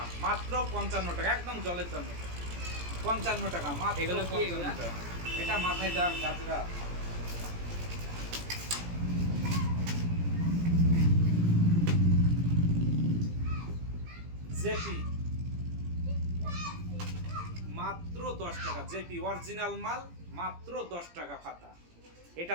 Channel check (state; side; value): late; left; 17 ms